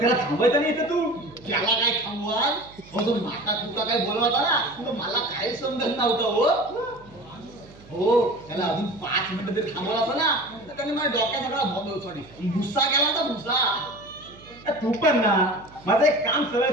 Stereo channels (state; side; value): noise; right; hum, 23 dB below the sound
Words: थांबायचं नाही इथं तू त्याला काय थांबवाल हो तो माता तुका काय बोलवता ना तुला मला काय समजत नव्हतं हो त्याला अजून 5 मिनिटं तरी थांबवलं असं ना तर त्याने माझ्या डोक्यात सगळा सॉरी भुसा केला होता भुसा तू पण ना माझं एक काम सरळ